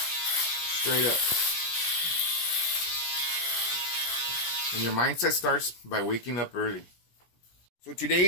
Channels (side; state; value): right; late; 17 ms